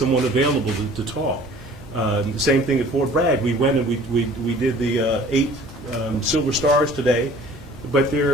available to talk. The same thing at Fort Bragg. We went and we did the 8 Silver Stars today, but there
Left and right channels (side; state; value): both; normal; correlation 0.49